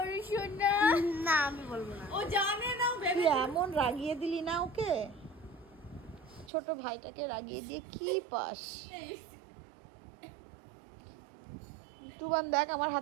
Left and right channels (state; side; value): drops out; left; at 6.5 s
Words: না। না আমি বলবো না। ও জানে না, তুই এমন রাগিয়ে দিলি না ওকে, ছোট ভাইটাকে রাগিয়ে দিয়ে কি পাস? টুবান দেখ আমার